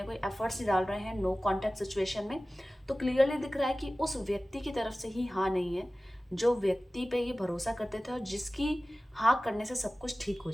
कोई एफर्ट्स नहीं डाल रहे हैं नो कॉन्टैक्ट सिचुएशन में, तो क्लियरली दिख रहा है कि उस व्यक्ति की तरफ से ही हाँ नहीं है जो व्यक्ति पे ये भरोसा करते थे और जिसकी हाँ करने से सब कुछ ठीक हो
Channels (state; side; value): normal; both; correlation 0.97